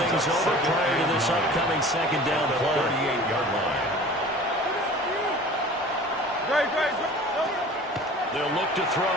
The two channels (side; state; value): both; normal; correlation 0.43